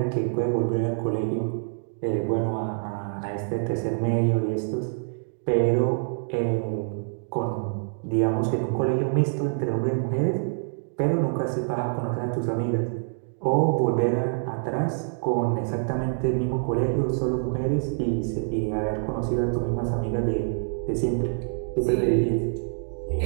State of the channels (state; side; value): silent; left; digital silence